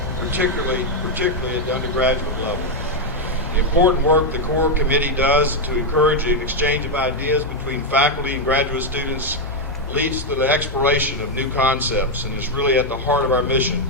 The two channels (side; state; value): both; normal; correlation 0.02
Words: particularly at the undergraduate level. The important work the core committee does to encourage an exchange of ideas between faculty and graduate students leads to the exploration of new concepts and is really at the heart of our mission